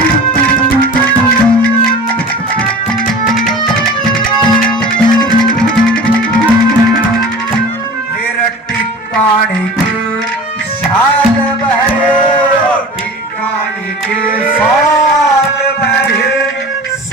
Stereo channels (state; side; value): normal; both; correlation 0.38